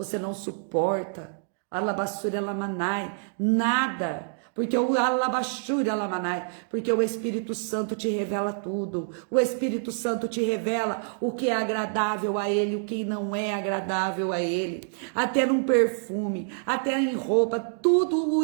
não suporta alabassuri alamanai, nada. Porque o alabassuri alamanai, porque o Espírito Santo te revela tudo. O Espírito Santo te revela o que é agradável a Ele, o que não é agradável a Ele. Até num perfume, até em roupa, tudo o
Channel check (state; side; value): silent; left; digital silence